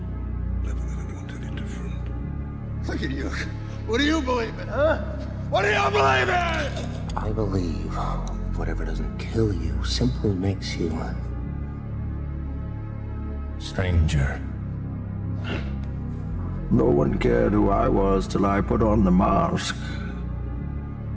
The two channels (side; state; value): both; identical; correlation 1.00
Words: Never let anyone tell you different. Look at you. What do you believe in, huh? What do you believe in? I believe whatever doesn't kill you simply makes you stranger. No one cared who I was till I put on the mask.